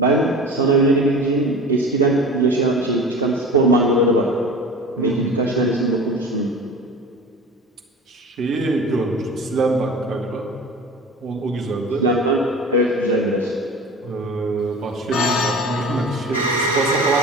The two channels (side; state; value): both; normal; correlation 0.36